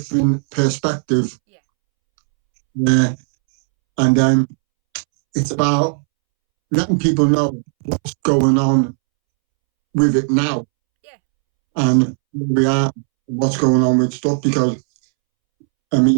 perspective, Yeah. And then it's about letting people know what's going on with it now. Yeah. And where we are, what's going on with stuff, because I mean,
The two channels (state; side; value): silent; left; 69 dB below the other